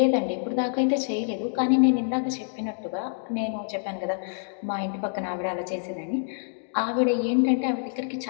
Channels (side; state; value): right; silent; digital silence